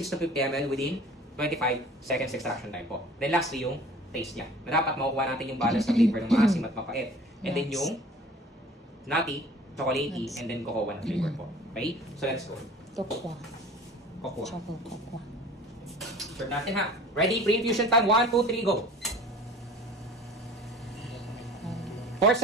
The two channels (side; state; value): both; normal; correlation 0.46